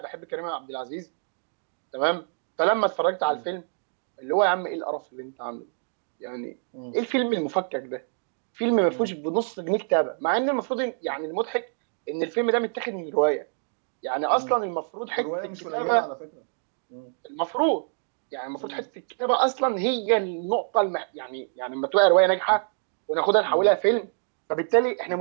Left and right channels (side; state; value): left; silent; digital silence